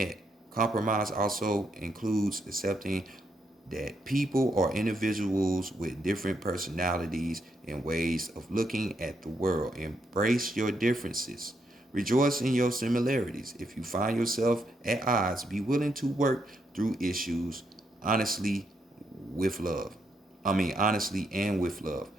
Compromise also includes accepting that people are individuals with different personalities and ways of looking at the world. Embrace your differences. Rejoice in your similarities. If you find yourself at odds, be willing to work through issues honestly with love. Honestly and with love.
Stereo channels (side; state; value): both; normal; correlation 0.78